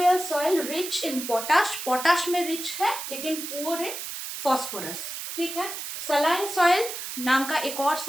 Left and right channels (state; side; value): noise; right; hiss, 7 dB below the sound